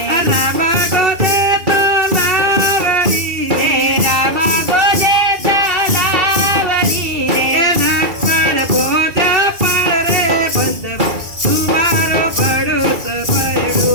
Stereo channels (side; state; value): left; late; 2.3 ms